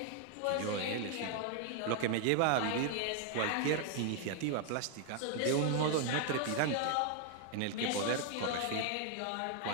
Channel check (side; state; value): both; different; correlation 0.00